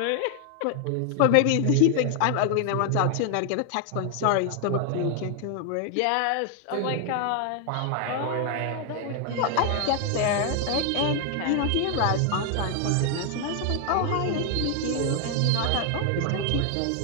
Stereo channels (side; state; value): both; different; correlation 0.00